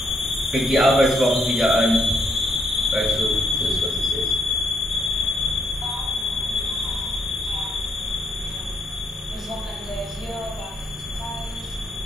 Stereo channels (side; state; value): both; normal; correlation 0.74